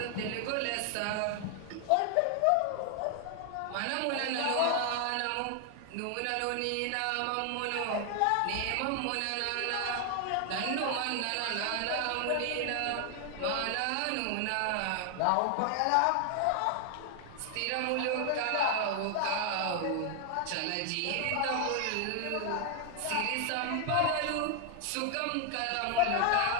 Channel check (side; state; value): both; different; correlation 0.00